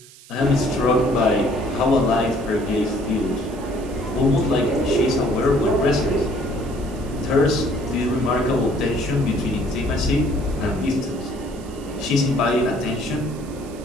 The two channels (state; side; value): noise; right; hiss, 22 dB below the sound